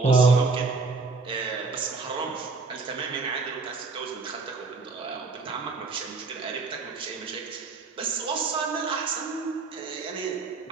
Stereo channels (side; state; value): left; quieter; 4.2 dB